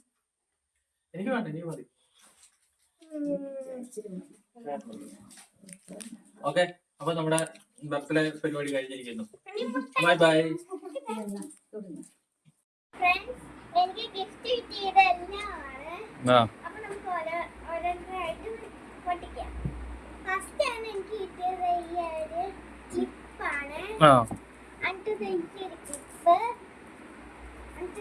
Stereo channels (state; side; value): identical; both; correlation 1.00